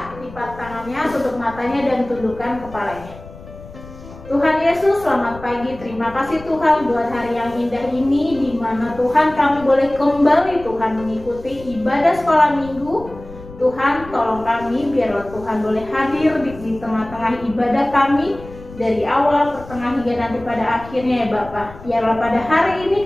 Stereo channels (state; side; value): noise; left; rumble, 17 dB below the sound